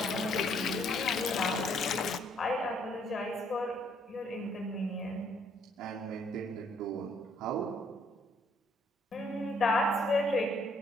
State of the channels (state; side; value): normal; both; correlation 0.67